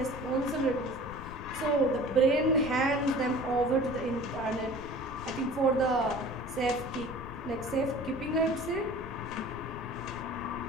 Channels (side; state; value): left; noise; rumble, 13 dB below the sound